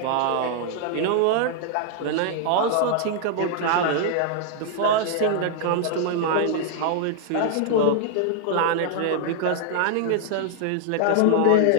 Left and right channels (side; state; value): both; different; correlation 0.00